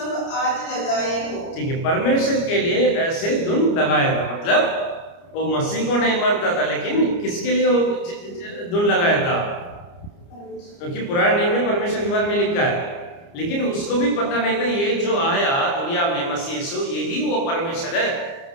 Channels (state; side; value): late; right; 29 ms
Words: आज लगाए हो। ठीक है, परमेश्वर के लिए ऐसे धुन लगाया था, मतलब वो मसीह को नहीं मानता था, लेकिन किसके लिए वो धुन लगाया था, क्योंकि पुराने नियम में परमेश्वर के बारे में लिखा है, लेकिन उसको भी पता नहीं था ये जो आया दुनिया में मसीह यीशु, यही वो परमेश्वर है,